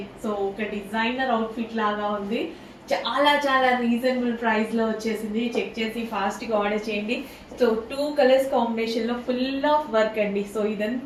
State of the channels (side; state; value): both; identical; correlation 1.00